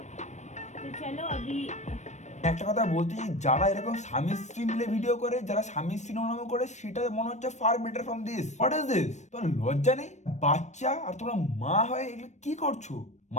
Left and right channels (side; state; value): right; late; 0.34 ms